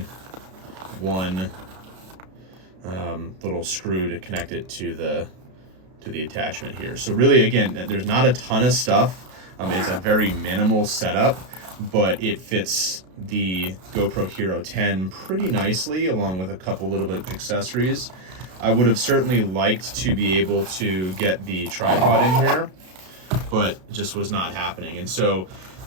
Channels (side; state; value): left; late; 32 ms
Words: one little screw to connect it to the attachment here. So really, again, there's not a ton of stuff. It's a very minimal setup, but it fits the GoPro Hero 10 pretty nicely, along with a couple little bit of accessories. I would have certainly liked to be able to get the tripod in here, but it just was not happening. And so